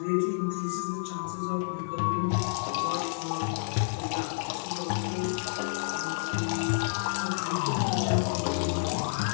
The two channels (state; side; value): silent; right; 58 dB below the other